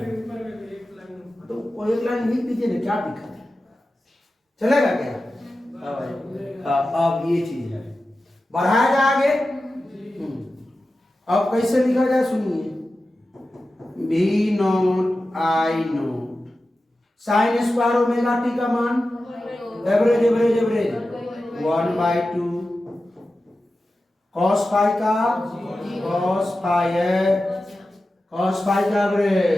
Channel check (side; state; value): both; normal; correlation 0.93